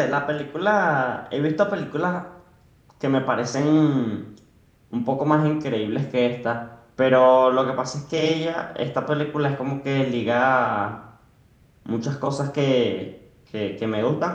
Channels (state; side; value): identical; both; correlation 1.00